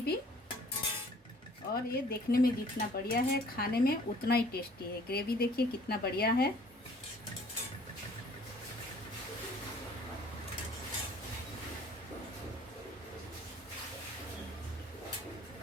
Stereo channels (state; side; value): normal; both; correlation 0.54